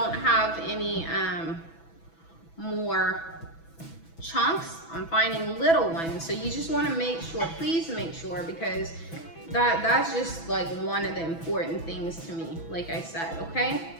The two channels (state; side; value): late; right; 6.1 ms